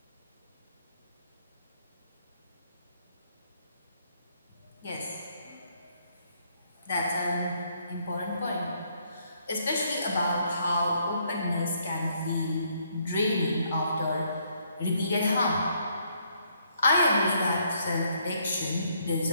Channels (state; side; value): inverted; both; correlation -0.70